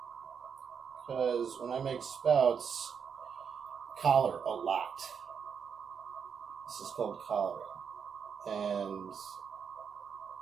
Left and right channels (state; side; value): quieter; left; 6.8 dB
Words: Because when I make spouts, collar a lot. This is called collaring. And